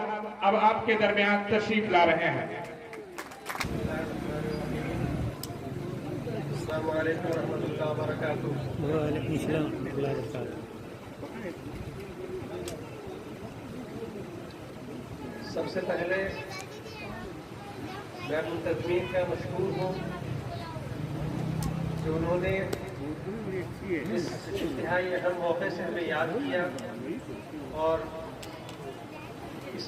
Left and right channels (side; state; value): both; identical; correlation 1.00